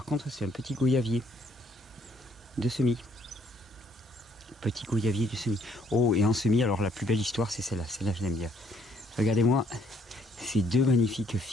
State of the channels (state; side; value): normal; both; correlation 0.65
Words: contre, c'est un petit goyavier de semis. Petit goyavier de semis. Oh, et en semis, alors la plus belle histoire, c'est celle-là. Celle-là, je l'aime bien. Regardez-moi ces deux magnifiques